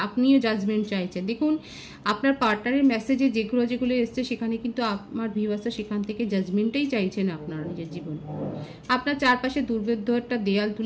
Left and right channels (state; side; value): identical; both; correlation 1.00